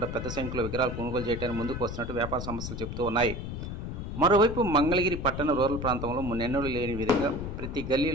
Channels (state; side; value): noise; left; rumble, 6 dB below the sound